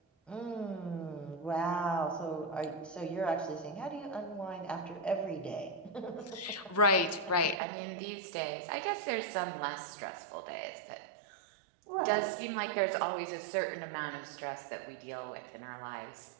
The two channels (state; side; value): drops out; left; at 7.6 s